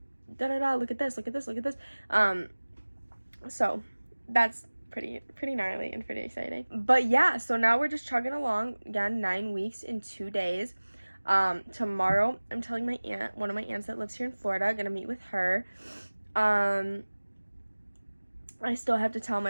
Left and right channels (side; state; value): both; inverted; correlation -1.00